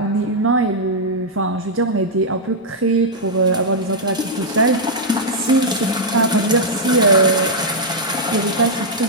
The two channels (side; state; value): both; normal; correlation -0.05